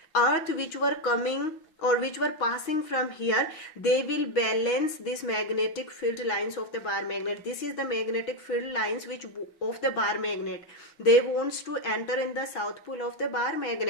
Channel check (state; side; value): late; right; 6.2 ms